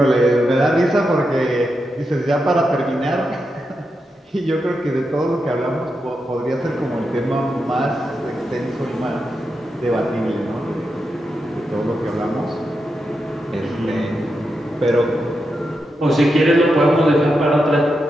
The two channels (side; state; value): both; normal; correlation 0.86